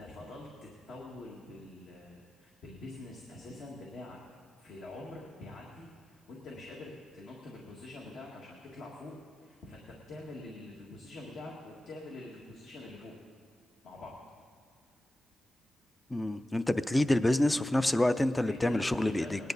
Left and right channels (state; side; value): normal; both; correlation 0.95